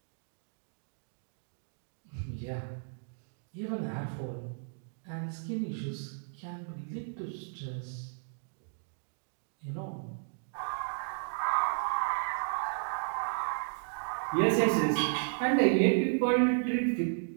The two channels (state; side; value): silent; left; digital silence